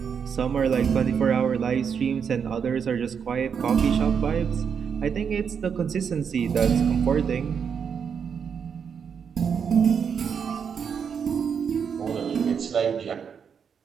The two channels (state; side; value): quieter; left; 6.9 dB